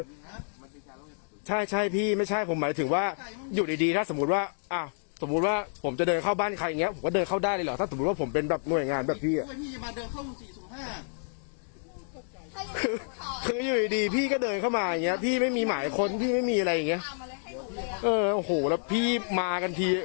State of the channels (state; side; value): silent; right; digital silence